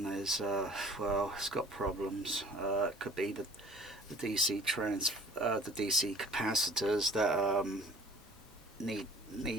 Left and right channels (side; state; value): both; normal; correlation 0.48